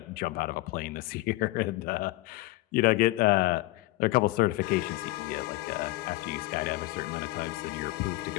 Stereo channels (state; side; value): quieter; right; 19.4 dB